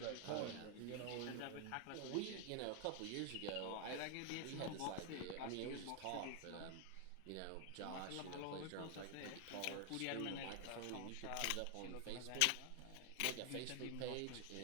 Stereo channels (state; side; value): different; both; correlation 0.00